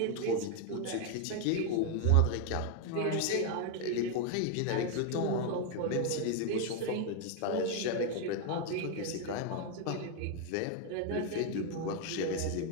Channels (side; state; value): both; different; correlation 0.01